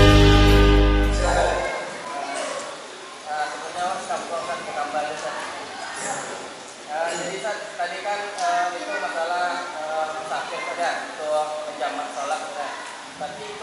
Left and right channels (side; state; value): both; identical; correlation 1.00